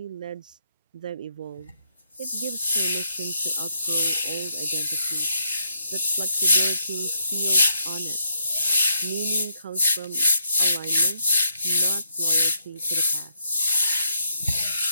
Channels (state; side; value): inverted; both; correlation -0.76